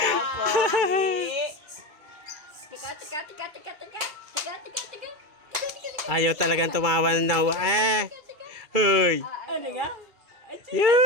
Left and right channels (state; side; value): late; left; 2.3 ms